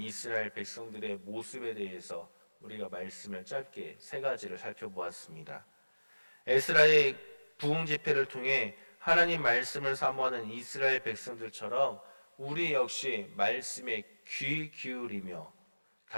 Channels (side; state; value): both; inverted; correlation -1.00